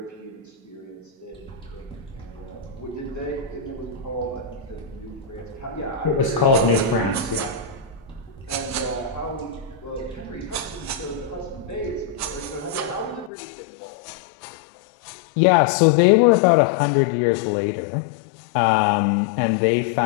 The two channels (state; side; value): drops out; right; at 13.3 s